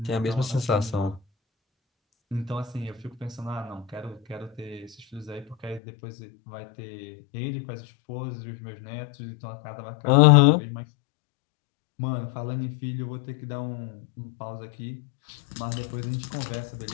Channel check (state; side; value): drops out; right; at 5.8 s